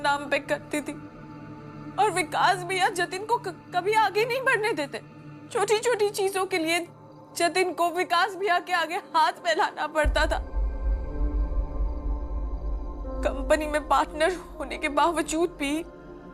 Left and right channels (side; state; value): both; identical; correlation 1.00